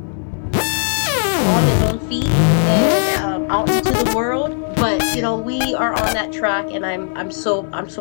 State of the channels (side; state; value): right; silent; digital silence